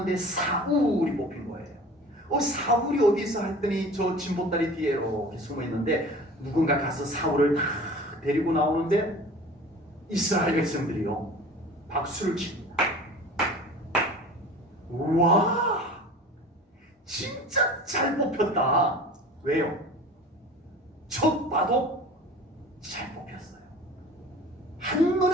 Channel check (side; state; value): both; normal; correlation 0.41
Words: 사울이 뽑힌 거예요. 사울이 어디 있어 했더니 저 진보다리 뒤에 이렇게 숨어 있는데 누군가 가서 사울을 다 데리고 나오는데 이스라엘 백성들이요 박수를 칩니다. 우와, 진짜 잘 뽑혔다. 왜요? 척 봐도 잘 뽑혔어요.